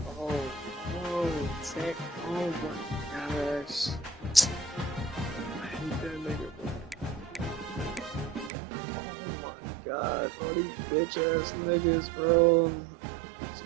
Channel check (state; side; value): drops out; left; at 8.5 s